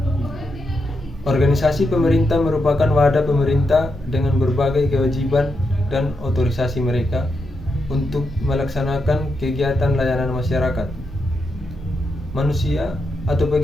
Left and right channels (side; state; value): both; normal; correlation 0.84